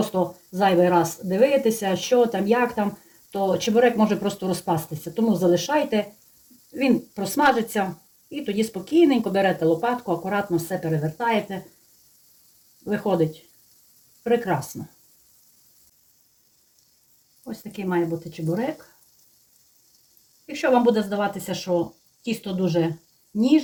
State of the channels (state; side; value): identical; both; correlation 1.00